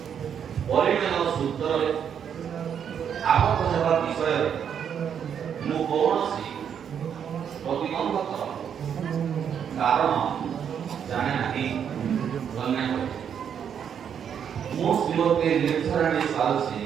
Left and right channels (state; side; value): quieter; left; 8.1 dB